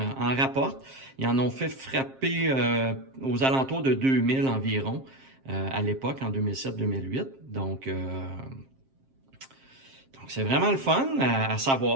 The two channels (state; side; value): late; left; 7.5 ms